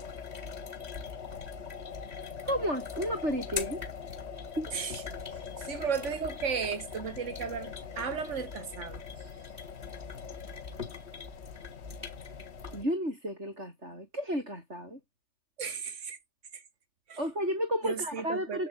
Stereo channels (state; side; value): late; left; 3.1 ms